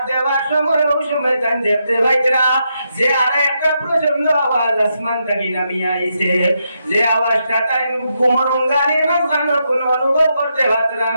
দেওয়ার সময় ওই সময় তান দেখতে পাইতরা যে আর একটা প্রচন্ড আওয়াজ আসমান থেকে নামিয়ে আইছে। যে আওয়াজটা তাই ঘুমরঙ্গানির মাঝখানে কোনো অনুভব করতে পারতরা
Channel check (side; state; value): both; inverted; correlation -0.82